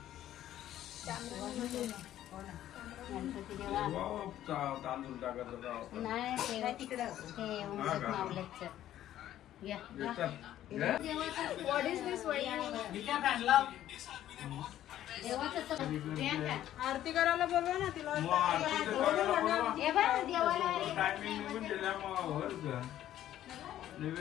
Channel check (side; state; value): right; quieter; 12.4 dB